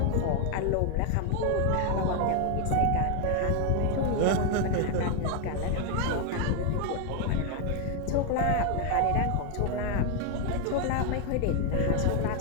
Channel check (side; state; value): both; different; correlation 0.01